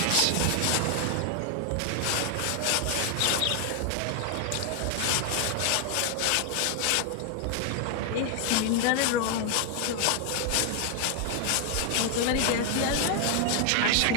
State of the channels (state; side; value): different; both; correlation 0.00